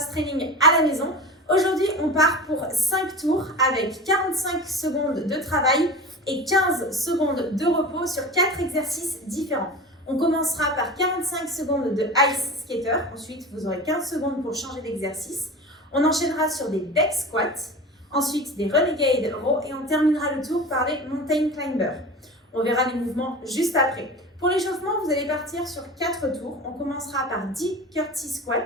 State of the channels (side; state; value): both; normal; correlation 0.32